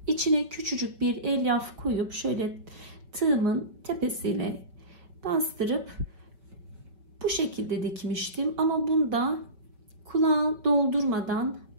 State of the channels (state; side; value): late; left; 5.2 ms